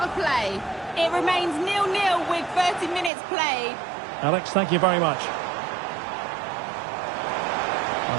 of play. It remains 0-0 with 30 minutes played. Alex, thank you very much.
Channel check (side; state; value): left; drops out; at 3.1 s